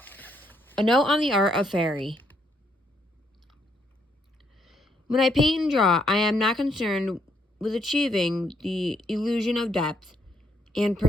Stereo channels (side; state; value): both; normal; correlation 0.73